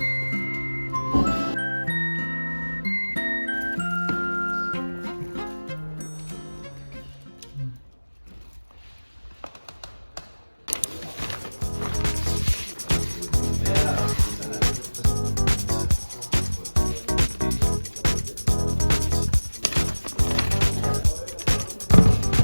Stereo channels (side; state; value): both; inverted; correlation -1.00